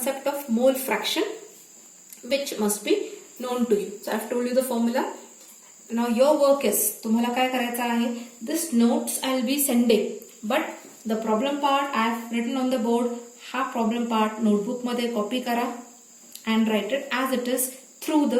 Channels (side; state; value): both; identical; correlation 1.00